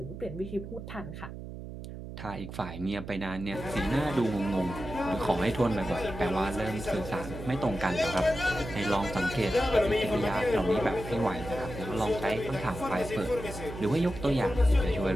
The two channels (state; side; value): noise; right; hum, 10 dB below the sound